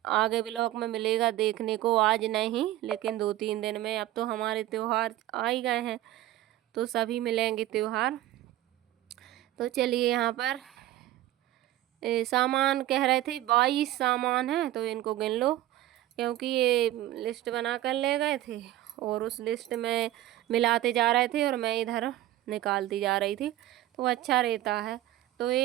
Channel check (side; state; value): left; quieter; 14.5 dB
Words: ब्लॉग में मिलेगा देखने को। आज नहीं, लेकिन 2-3 दिन में। अब तो हमारे त्योहार आ ही गए हैं तो सभी मिलेंगे त्योहार। तो चलिए, यहाँ पर सामान कह रहे थे 22 सामान है, तो इनको गिन लो, क्योंकि ये लिस्ट बना कर ले गए थे और उस लिस्ट में मिलाते जा रहे थे और मैं इधर निकालती जा रही थी, तो अच्छा रहता है। तो